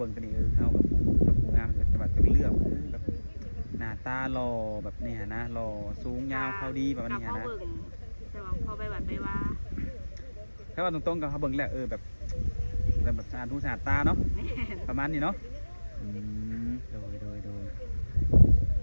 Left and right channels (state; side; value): inverted; both; correlation -1.00